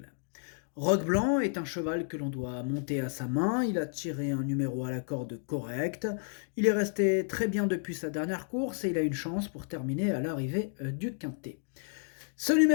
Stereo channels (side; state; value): right; silent; 57 dB below the other